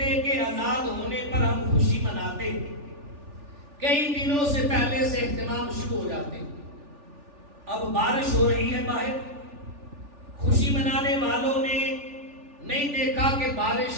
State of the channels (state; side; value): late; left; 3.4 ms